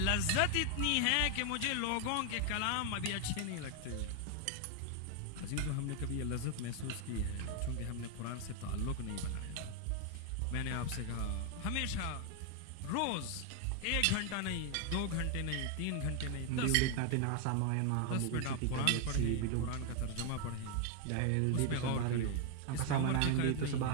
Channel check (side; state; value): both; different; correlation 0.00